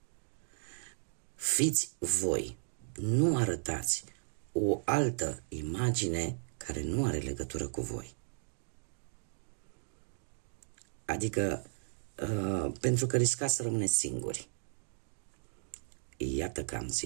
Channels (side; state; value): left; silent; digital silence